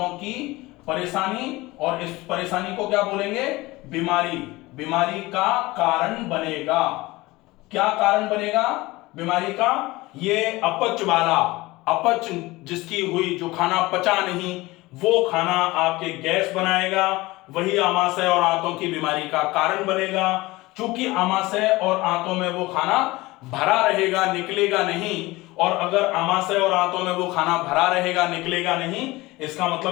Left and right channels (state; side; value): quieter; right; 20.5 dB